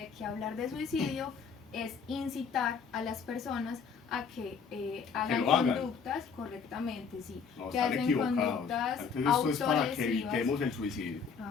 que hablar de suicidio es incitar a las personas a que hagan conductas correctamente, sí, No, que hacen conductas autolesivas. Esto es para que evitemos el suicidio.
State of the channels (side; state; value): right; quieter; 5.9 dB